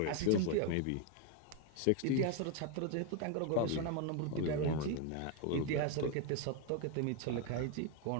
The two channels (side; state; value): both; different; correlation 0.01